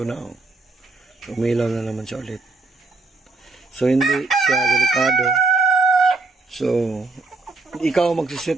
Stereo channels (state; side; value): quieter; left; 3.6 dB